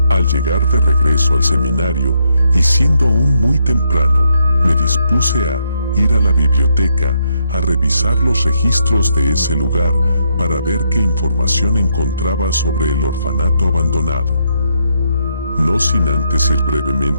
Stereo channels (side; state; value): both; inverted; correlation -0.77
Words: Al llegar de regreso al seminario, y siendo aún muy temprano, me dispuse a ir a la biblioteca a revisar los registros de ese lugar para ver qué información encontraba sobre el orfanato abandonado. No sin antes ir